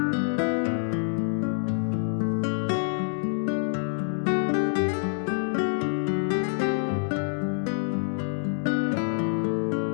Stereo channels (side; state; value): right; silent; digital silence